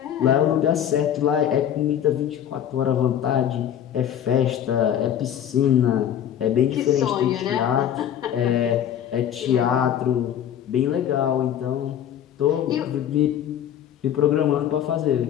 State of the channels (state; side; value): quieter; right; 10.0 dB